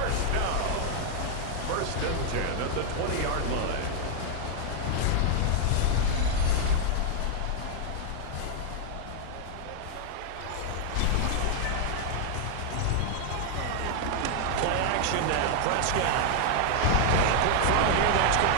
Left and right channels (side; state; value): both; different; correlation 0.00